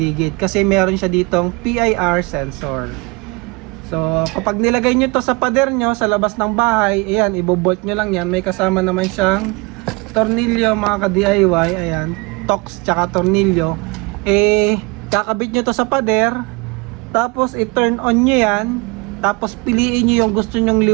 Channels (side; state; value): left; quieter; 27.4 dB